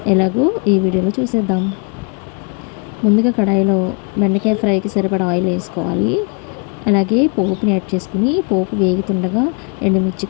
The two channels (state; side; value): quieter; right; 35.1 dB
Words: ఎలాగో ఈ వీడియోలో చూసేద్దాం. ముందుగా కడాయిలో బెండకాయ ఫ్రైకి సరిపడా ఆయిల్ వేసుకోవాలి. అలాగే పోపుని యాడ్ చేసుకుని, పోపు వేగుతుండగా ఎండుమిర్చి,